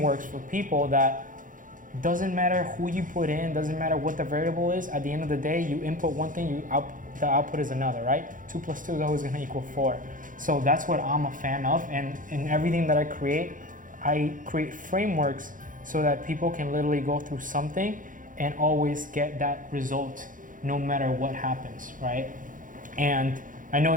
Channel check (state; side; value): late; left; 0.39 ms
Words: for people that doesn't matter who you put in, doesn't matter what the variable is. At the end of the day, you input one thing, the output is another, right? 2 plus 2 is always going to equal 4. So that's what I'm a fan of, and in everything that I create frameworks so that people can literally go through something and always get that result no matter what happens, right? And I know